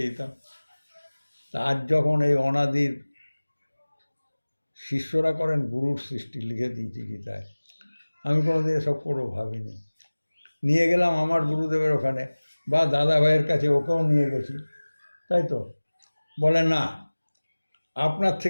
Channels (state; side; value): inverted; both; correlation -1.00